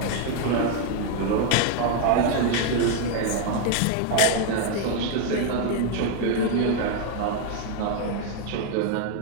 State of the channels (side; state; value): both; different; correlation 0.00